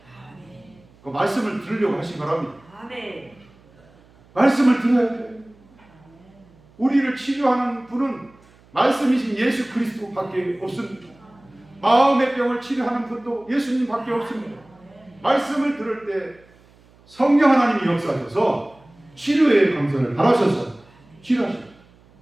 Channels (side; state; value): right; noise; hum, 28 dB below the sound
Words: 그 말씀을 들으려고 하시 바랍니다. 말씀을 들어야 돼요. 우리를 치료하는 분은 말씀이신 예수 그리스도밖에 없습니다. 마음의 병을 치료하는 분도 예수님밖에 없습니다. 말씀을 들을 때 성령 하나님이 역사하셔서 치료의 강선을 바라셔서 치료하십니다.